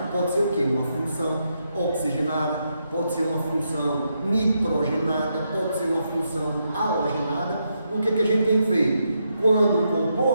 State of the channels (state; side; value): inverted; both; correlation -0.81